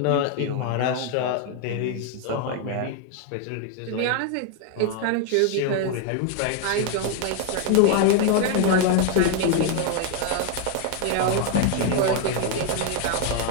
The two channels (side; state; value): both; different; correlation 0.00